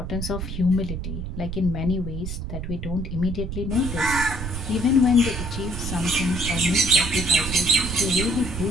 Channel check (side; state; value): right; noise; rumble, 6 dB below the sound